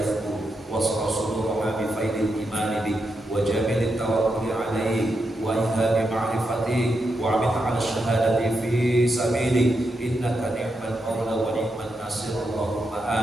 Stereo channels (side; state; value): both; normal; correlation 0.85